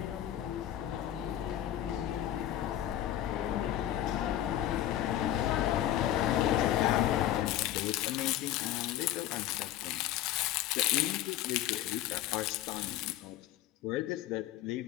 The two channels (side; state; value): right; quieter; 12.6 dB